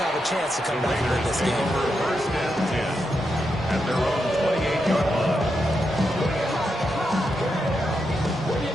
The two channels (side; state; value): both; normal; correlation 0.85